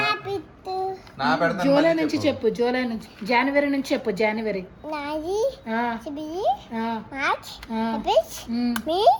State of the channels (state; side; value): identical; both; correlation 1.00